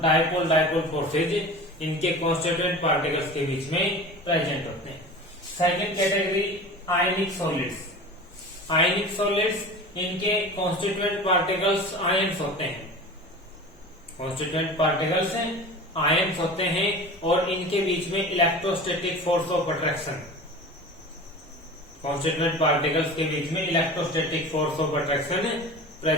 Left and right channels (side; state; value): both; normal; correlation 0.35